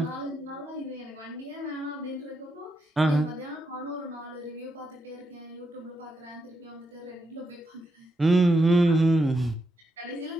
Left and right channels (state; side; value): normal; both; correlation 0.83